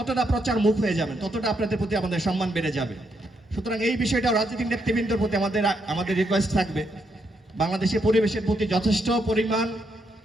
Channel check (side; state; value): both; normal; correlation 0.78